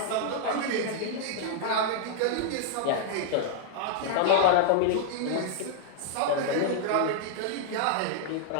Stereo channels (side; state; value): both; different; correlation -0.01